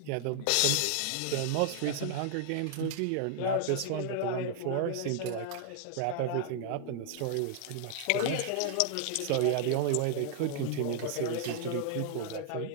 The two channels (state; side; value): different; both; correlation 0.00